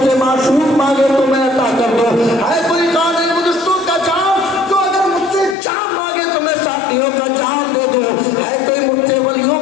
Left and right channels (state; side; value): drops out; right; at 5.6 s